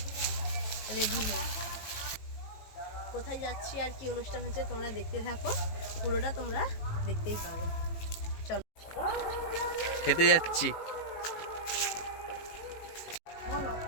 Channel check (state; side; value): late; right; 18 ms